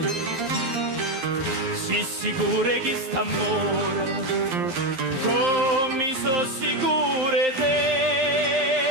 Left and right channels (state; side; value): late; left; 11 ms